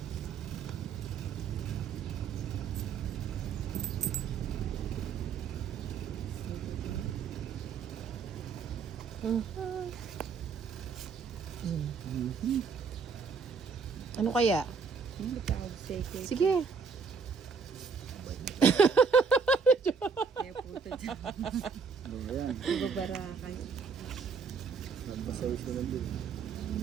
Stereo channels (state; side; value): quieter; left; 5.5 dB